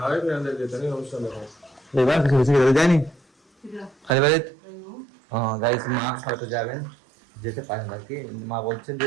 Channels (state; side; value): drops out; left; at 4.2 s